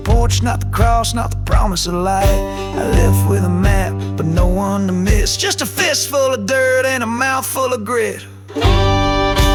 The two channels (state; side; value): identical; both; correlation 1.00